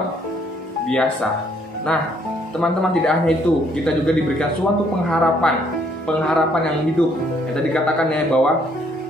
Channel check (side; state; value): both; normal; correlation 0.67